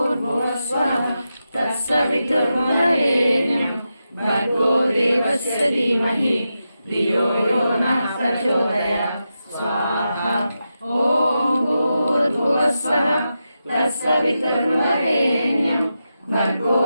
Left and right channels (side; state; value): both; inverted; correlation -0.89